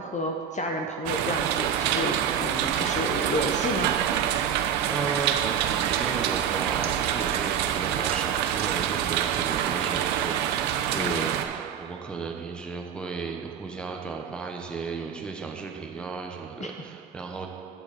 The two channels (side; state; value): left; quieter; 7.3 dB